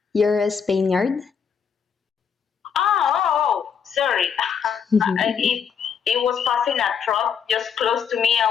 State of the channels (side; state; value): right; quieter; 7.0 dB